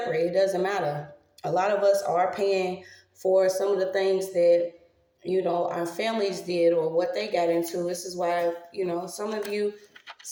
It doesn't matter. A lot of us are paying for some of the things that, our families did or what they got into. This is why, some of you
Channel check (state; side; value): identical; both; correlation 1.00